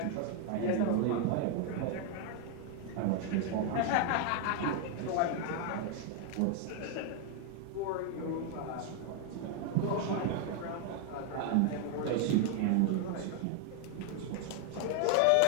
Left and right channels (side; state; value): both; different; correlation 0.00